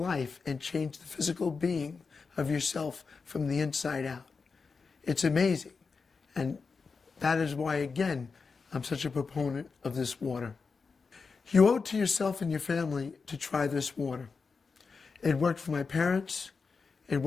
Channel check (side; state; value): right; quieter; 4.9 dB